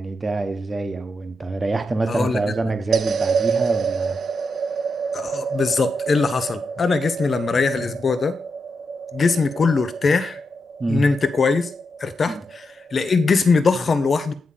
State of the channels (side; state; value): both; normal; correlation 0.85